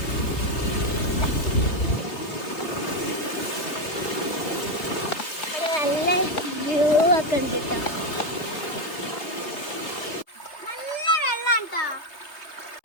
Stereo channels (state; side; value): late; right; 3.2 ms